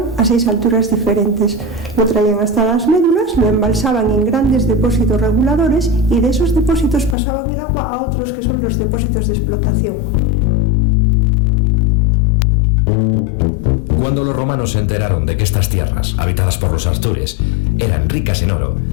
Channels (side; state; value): right; drops out; at 7.2 s